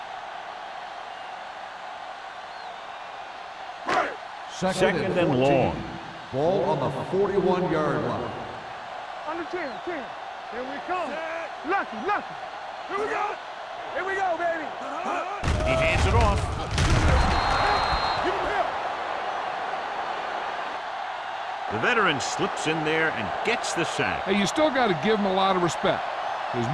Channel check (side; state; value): both; identical; correlation 1.00